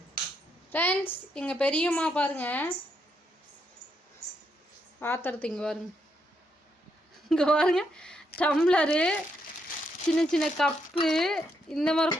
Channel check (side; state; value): both; normal; correlation 0.78